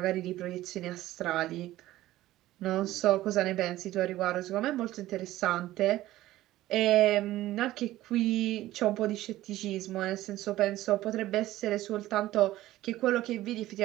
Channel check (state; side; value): quieter; left; 15.5 dB